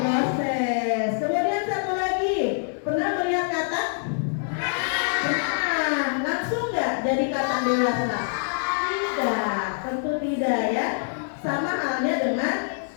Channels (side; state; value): right; silent; digital silence